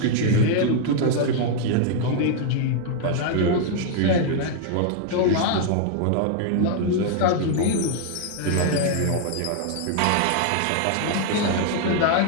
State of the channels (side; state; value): both; different; correlation 0.00